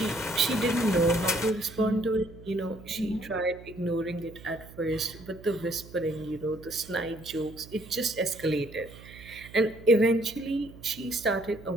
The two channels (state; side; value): noise; right; hum, 18 dB below the sound